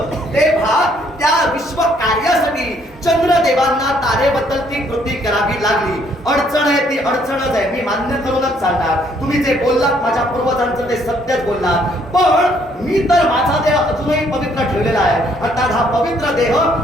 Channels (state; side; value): normal; both; correlation 0.66